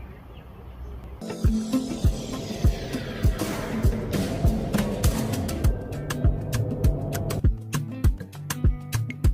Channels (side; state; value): both; identical; correlation 1.00